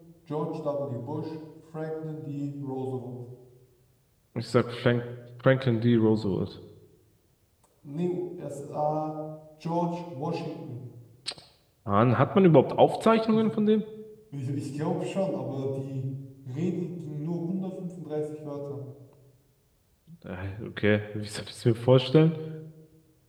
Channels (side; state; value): both; identical; correlation 1.00